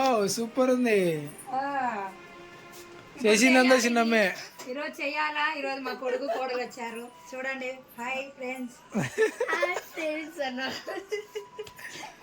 సూపర్ ఉంది చేసిందంతా చిన్నమ్మే. ఈరోజు చెయ్యాలా. ఈరోజు మా కొడుకు కోడలు వచ్చారు చూడండి. Hi friends.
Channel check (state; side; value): identical; both; correlation 1.00